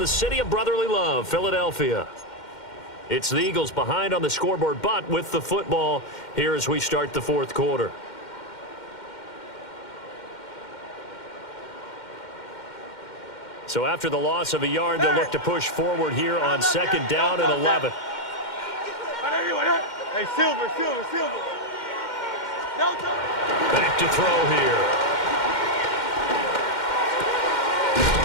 city of brotherly love, Philadelphia. It's the Eagles behind on the scoreboard, but with the football here as we start the 4th quarter. So after the loss of a yard, they'll look to push forward here on 2nd down and 11. Hey, Silver. Back to throw here.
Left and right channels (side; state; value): right; late; 2.1 ms